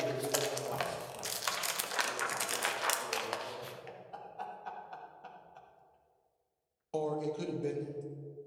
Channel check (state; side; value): identical; both; correlation 1.00